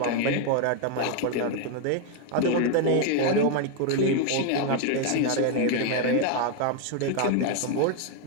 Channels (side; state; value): both; different; correlation 0.01